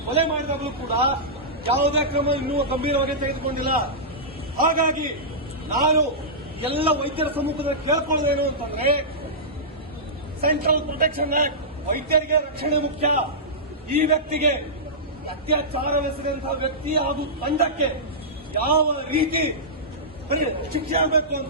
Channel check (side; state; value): both; normal; correlation -0.16